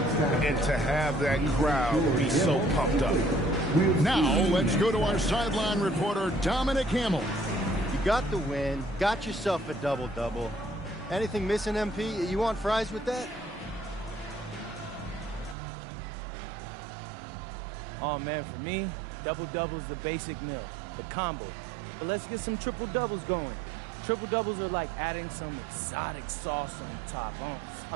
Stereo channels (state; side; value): drops out; left; at 15.6 s